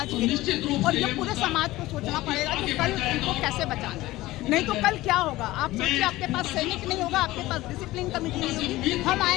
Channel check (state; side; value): quieter; right; 17.8 dB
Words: के, और ये पूरे समाज को सोचना पड़ेगा कि कल उनको कैसे बचाना है। नहीं तो कल क्या होगा? आप सोचिए, आपके पास सैनिक नहीं होगा, आपके पास डिसिप्लिन कमेटी नहीं होगी, हम